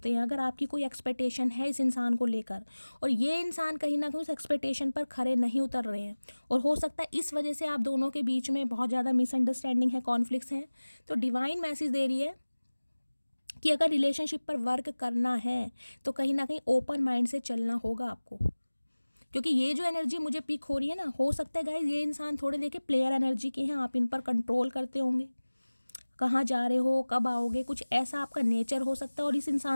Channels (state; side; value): inverted; both; correlation -1.00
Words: हैं। अगर आपकी कोई एक्सपेक्टेशन है इस इंसान को लेकर और ये इंसान कहीं ना कहीं उस एक्सपेक्टेशन पर खरे नहीं उतर रहे हैं, और हो सकता है इस वजह से आप दोनों के बीच में बहुत ज़्यादा मिसअंडरस्टैंडिंग है, कॉन्फ्लिक्ट्स हैं, तो डिवाइन मैसेज दे रही है कि अगर रिलेशनशिप पर वर्क करना है तो कहीं ना कहीं ओपन माइंड से चलना होगा आपको। क्योंकि ये जो एनर्जी मुझे पिक हो रही है ना, हो सकता है गाइज ये इंसान थोड़े देखिए प्लेयर एनर्जी के हैं, आप इन पर कंट्रोल करते होंगे, कहाँ जा रहे हो, कब आओगे, कुछ ऐसा आपका नेचर हो सकता है, और इस